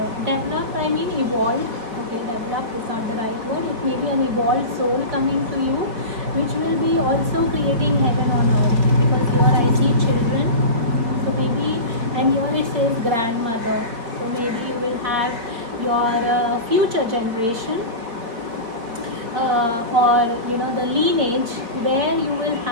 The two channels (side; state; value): left; late; 4.3 ms